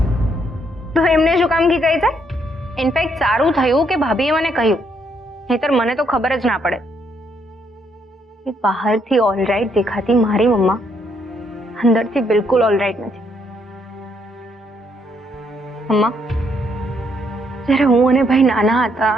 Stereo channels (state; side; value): normal; both; correlation 0.72